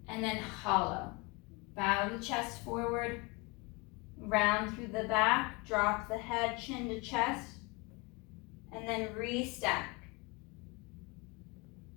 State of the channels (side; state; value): right; quieter; 26.8 dB